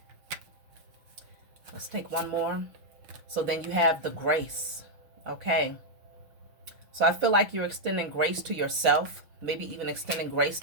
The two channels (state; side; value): late; left; 6.2 ms